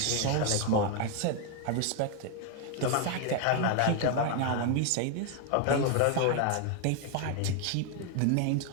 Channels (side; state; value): both; different; correlation 0.01